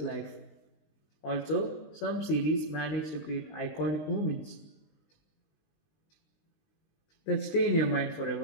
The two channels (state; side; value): late; right; 20 ms